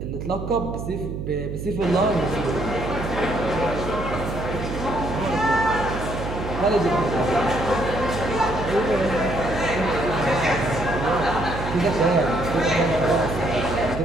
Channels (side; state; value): right; noise; hum, 6 dB below the sound